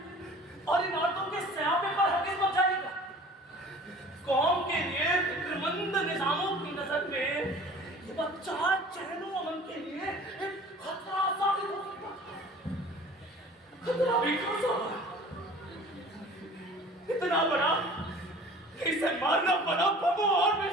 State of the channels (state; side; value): normal; both; correlation 0.45